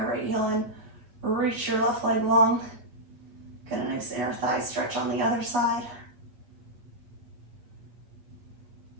right heel in. Reach your left leg long. Get a nice inner thigh stretch on the other side.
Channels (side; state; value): left; late; 8.3 ms